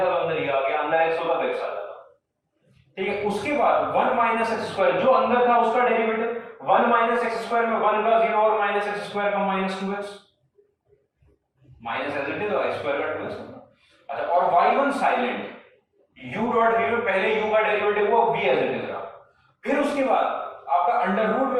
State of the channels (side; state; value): both; identical; correlation 1.00